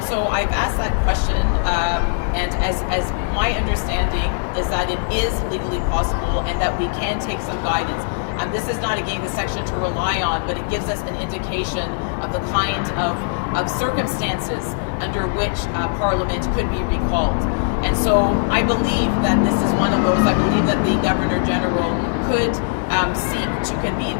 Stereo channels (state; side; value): silent; right; 58 dB below the other